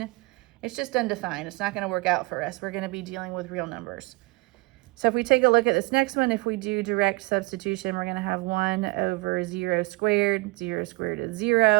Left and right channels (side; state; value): left; quieter; 25.1 dB